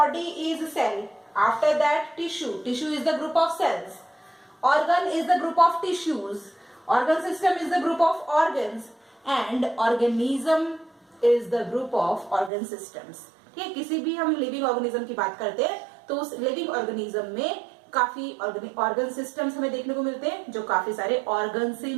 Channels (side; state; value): left; drops out; at 12.5 s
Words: is cell. After that tissue. Tissue is the group of cells. Organ is the group of tissues. Organ system is the group of organs. And organism is the group of organ systems. ठीक है, किसी भी हम living organism की बात करते हैं तो उस लिविंग ऑर्गेनिज्म में काफी ऑर्गन सिस्टम्स हमें देखने को मिलते हैं जो काफी सारे ऑर्गन से